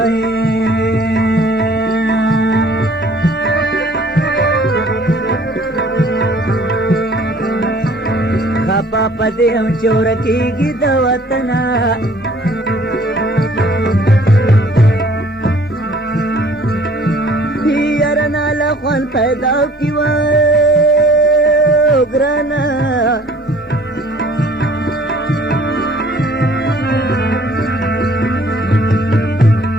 خپه په دې هم چې ورکېږي د وطنه یاره له خوند پیدا کړي وای ګرانه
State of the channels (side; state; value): both; normal; correlation 0.54